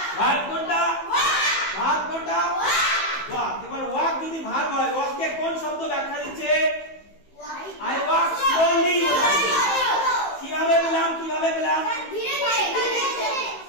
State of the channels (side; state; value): right; late; 15 ms